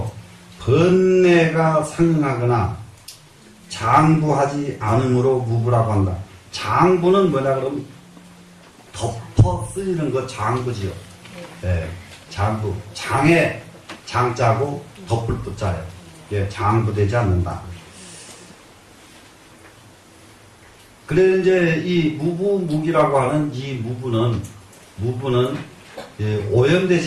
번뇌가 상응하거나 장부하지 않음으로 무부라고 한다. 장부는 뭐냐 그러면 덮어 쓰이는 거 장부지요. 예, 장부. 장에 장자고 덮을 붙자예요. 예, 장부되지 않는다. 그래 이제 이 무부무기라고 하는 이 무부는 예,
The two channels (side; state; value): both; identical; correlation 1.00